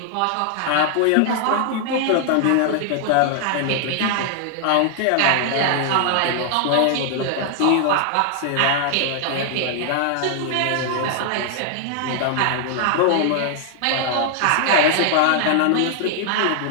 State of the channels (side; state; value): both; different; correlation 0.00